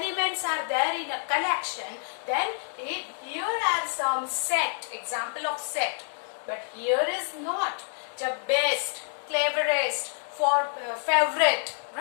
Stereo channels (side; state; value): right; silent; digital silence